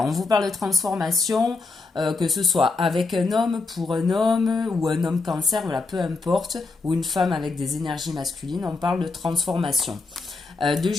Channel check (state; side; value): quieter; right; 3.8 dB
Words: on vous parle de transformation, que ce soit avec un homme, pour un homme, ou un homme cancer, voilà, peu importe, ou une femme avec des énergies masculines, on parle de transformation. De